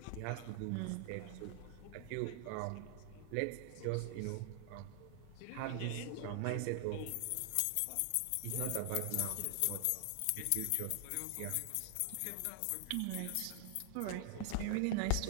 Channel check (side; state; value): both; different; correlation 0.00